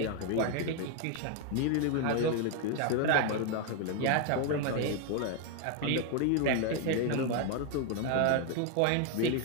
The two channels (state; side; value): different; both; correlation 0.01